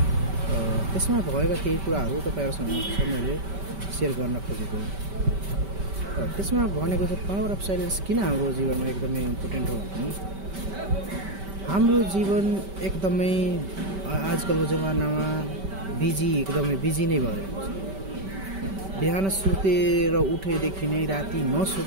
त्यसमा भएका केही कुराहरू तपाईँहरूसँग मैले सेयर गर्न खोजेको। त्यसमा भनेको चाहिँ पावर अफ साइलेन्स किन हाम्रो जीवनमा एकदमै इम्पोर्टेन्ट हो भने हाम्रो जीवन एकदमै आजकलको जमानामा एकदमै बिजी नै भइरहेको छ। बिहान सुतेर उठेदेखि नै राति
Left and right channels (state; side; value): late; left; 5.2 ms